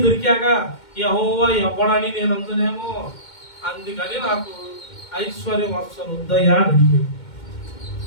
దొరికాక యెహోవా ఎవ్వడని నేను అందునేమో, అందుకని నాకు ఐశ్వర్యం అస్సలు వద్దయ్యా అని అడిగాడు.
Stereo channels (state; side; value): late; right; 2.2 ms